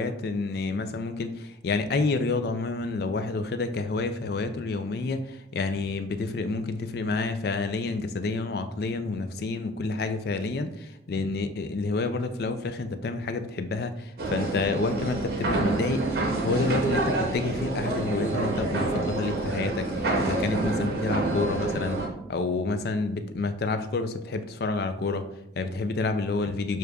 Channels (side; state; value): both; normal; correlation 0.44